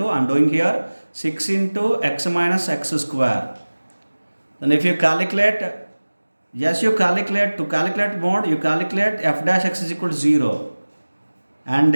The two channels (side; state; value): both; inverted; correlation -1.00